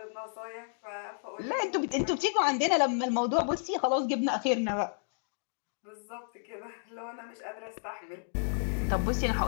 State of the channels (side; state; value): right; silent; digital silence